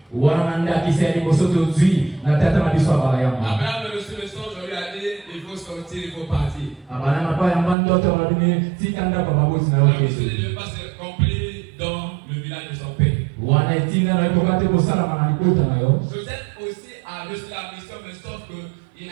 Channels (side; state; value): left; drops out; at 7.8 s